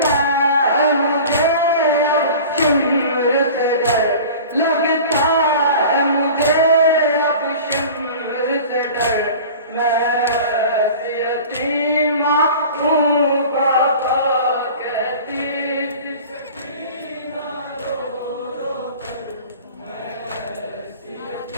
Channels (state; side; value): inverted; both; correlation -0.40